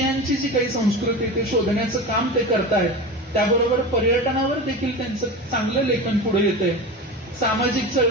जी काही संस्कृती ते शोधण्याचं काम ते करतायत. त्याबरोबर पर्यटनावर देखील त्यांचं चांगलं लेखन पुढे येतंय. सामाजिक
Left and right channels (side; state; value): both; normal; correlation 0.27